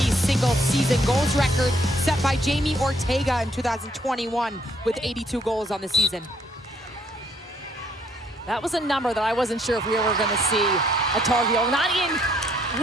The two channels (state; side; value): normal; both; correlation 0.68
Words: single-season goals record set by Jamie Ortega in 2021 with 82 goals on the season. That was a number that I wasn't sure if we were going to see a Tar Heel, not in